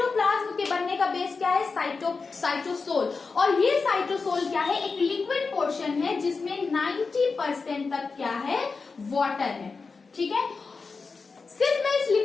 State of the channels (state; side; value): quieter; right; 4.5 dB